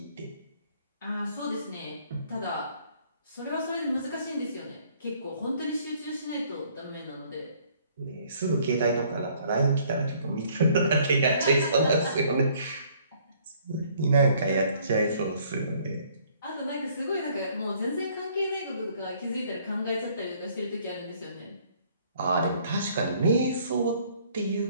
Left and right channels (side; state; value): both; inverted; correlation -0.61